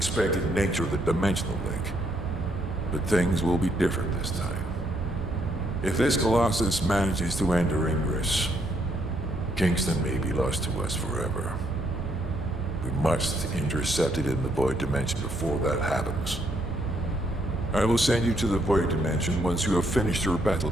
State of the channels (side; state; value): both; normal; correlation 0.72